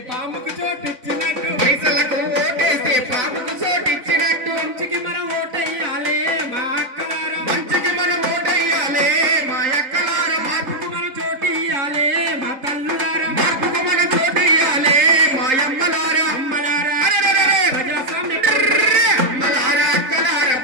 పాముకు చోటిచ్చినట్టు పైసలకు ఓటేస్తే పాముకు చోటిచ్చినట్టు మంచికి మనం ఓటేయాలే మా అక్కలారా మంచికి మనం ఓటేయాలే మా అక్కలారా మార్పుకు మనం చోటియ్యాలే మా తల్లులారా మార్పుకు మనం చోటియ్యాలే మా అమ్మలారా అమ్మలారా అరెరెరెరె! ప్రజాస్వామ్య అమ్మలారా అక్కలారా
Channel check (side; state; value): left; late; 3.8 ms